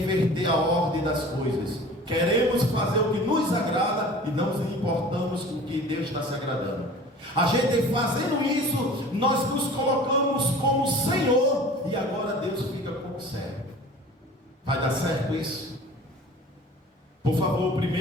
inverter a ordem das coisas. Queremos fazer o que nos agrada e não nos importamos com o que Deus está se agradando. A gente fazendo isso, nós nos colocamos como Senhor, e agora Deus fica como servo. Vai dar certo isso? Por favor, o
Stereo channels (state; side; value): normal; both; correlation 0.42